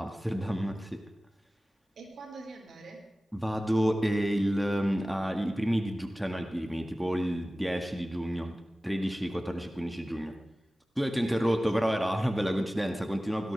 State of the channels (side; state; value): both; normal; correlation 0.97